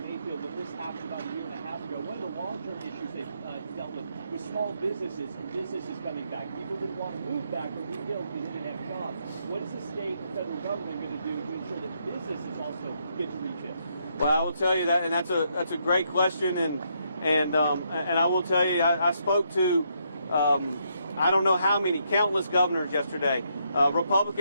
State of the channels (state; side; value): inverted; both; correlation -0.76